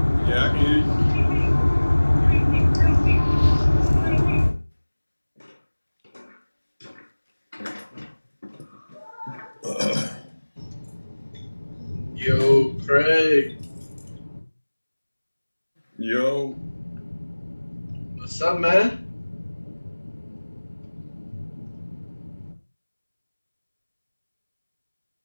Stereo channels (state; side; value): inverted; both; correlation -1.00